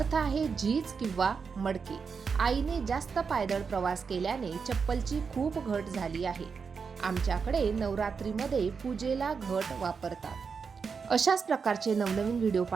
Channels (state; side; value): quieter; left; 5.6 dB